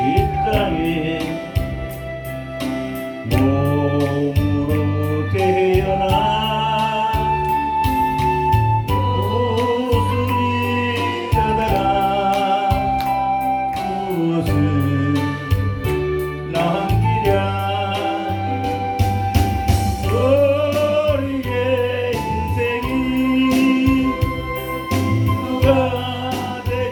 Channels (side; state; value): both; identical; correlation 1.00